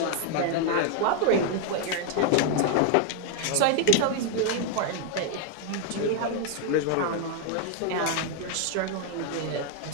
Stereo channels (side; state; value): both; different; correlation 0.00